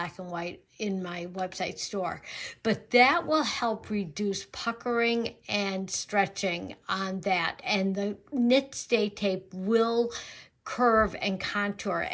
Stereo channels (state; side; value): identical; both; correlation 1.00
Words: and white in my website store. But that will help reduce puckering and stretching on that. And the knit stay tape will curve and contour